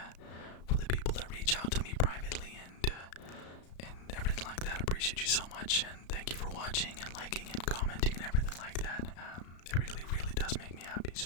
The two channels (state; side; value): late; right; 34 ms